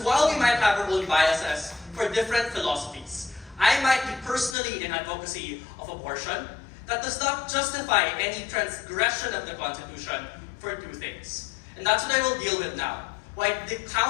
while we might have our own biases for different philosophies, I might be personally in advocacy of abortion. That does not justify any transgression of the Constitution for two things. And that's what I will deal with now. Why it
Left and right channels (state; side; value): drops out; right; at 4.5 s